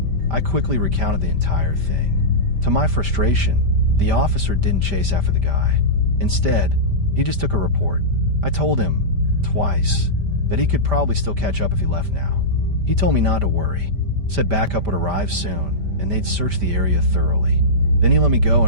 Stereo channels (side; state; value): left; late; 5.1 ms